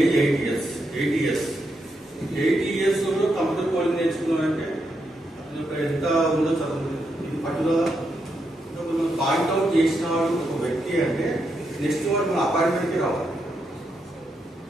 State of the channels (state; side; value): normal; both; correlation 0.82